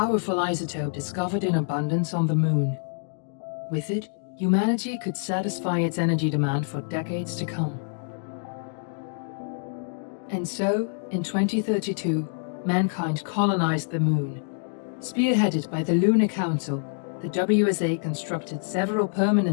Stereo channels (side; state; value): right; silent; digital silence